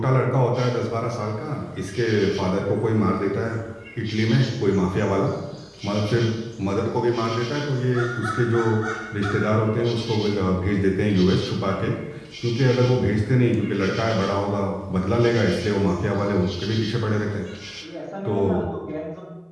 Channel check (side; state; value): both; identical; correlation 1.00